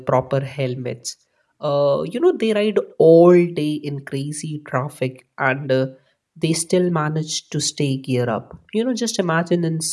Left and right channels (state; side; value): identical; both; correlation 1.00